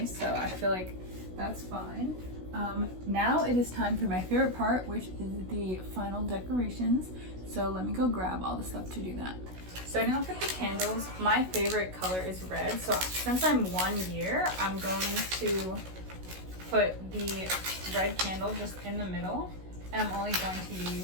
so I feel like that's fine. Now it is time for my favorite part, which is the final decorations. So let me go grab all the stuff to do that. Starting off with the candles, my favorite color is red. So since I'm 1 year, I'm going to put the red candle just in the middle, and I'm only going to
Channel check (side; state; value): left; late; 16 ms